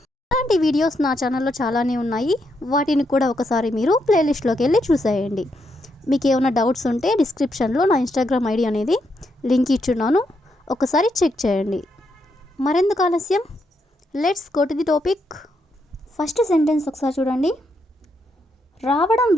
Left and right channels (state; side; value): normal; both; correlation 0.79